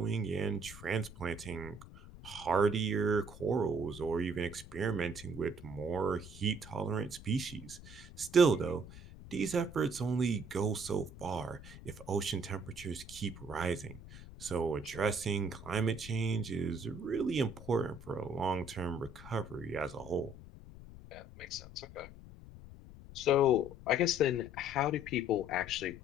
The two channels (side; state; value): left; noise; rumble, 16 dB below the sound